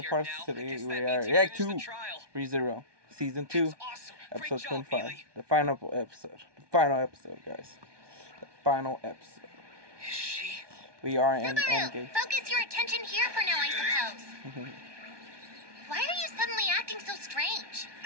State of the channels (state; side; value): late; left; 1.2 ms